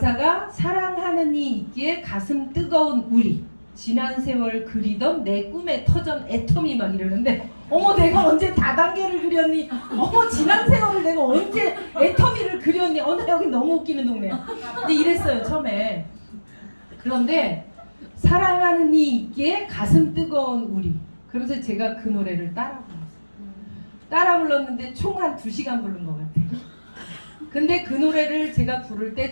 사랑하는 이 있기에 가슴 뜨거운 우리 지난 세월 그리던 내 꿈의 터전 애텀이 막 이러는데 어머 내가 언제 다단계를 그렸니? 어머 지난 세월을 내가 언제 애텀이를 그렸니? 나 여기 너무 웃기는 동네야. 근데 이랬어요 처음에. 그런데 사랑하는 이 있기에 가슴 뜨거운 우리 그러면서 제가 그 노래를 따라 불렀어요. 따라 불렀는데 총 한 2시간 부른 것 같아요. 근데 그 노래를 제가 부를 때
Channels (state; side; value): inverted; both; correlation -1.00